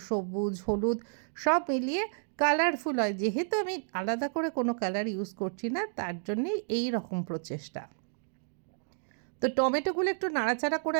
সবুজ, হলুদ সব মিলিয়ে কালারফুল হয়। যেহেতু আমি আলাদা করে কোনো কালার ইউজ করছি না, তার জন্যেই এই রকম প্রচেষ্টা। তো টমেটোগুলো একটু নাড়াচাড়া করে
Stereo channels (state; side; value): silent; left; digital silence